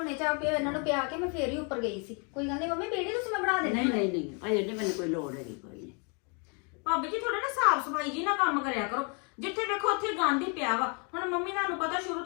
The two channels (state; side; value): quieter; right; 36.0 dB